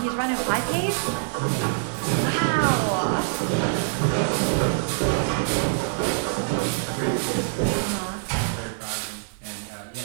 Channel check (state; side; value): silent; left; 60 dB below the other